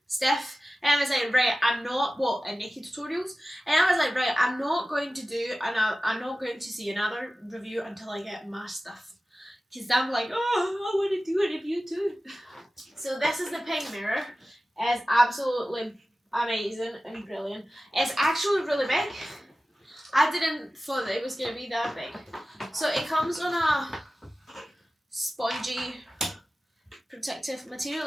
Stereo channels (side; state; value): both; normal; correlation 0.96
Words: Steph. And I was like, right, and Naked Tutorials. And I was like, right, I'm not going to see another review until I get my stuff. Because I'm like, oh, I want to do a review too. So this is the pink mirror. It's absolutely amazing and brilliant. It's actually really big. I didn't thought that it was going to be that big. So it comes on a spongy protective material.